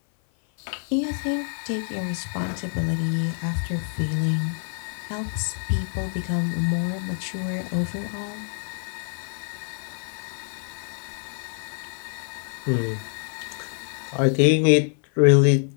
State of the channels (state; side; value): silent; right; 57 dB below the other